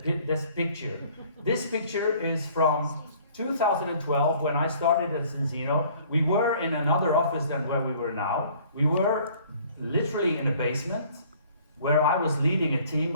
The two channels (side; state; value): both; inverted; correlation -0.55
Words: this picture. This picture is from 2012, when I started at Zinzino. We were in another office than where we were now. We were literally in a basement, where I was leading a team